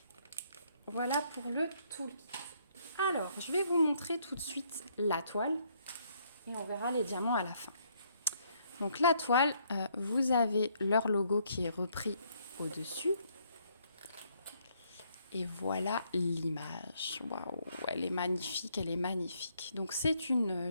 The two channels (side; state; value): both; inverted; correlation -0.69